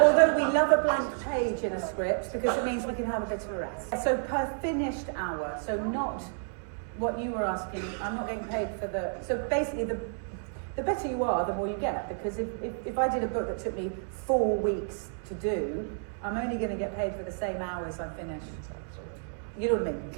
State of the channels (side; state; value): left; silent; digital silence